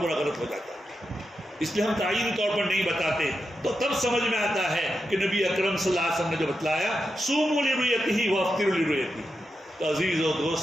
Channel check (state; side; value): normal; both; correlation 0.88